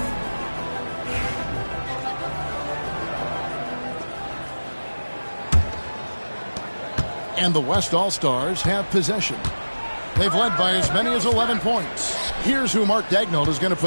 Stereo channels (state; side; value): inverted; both; correlation -1.00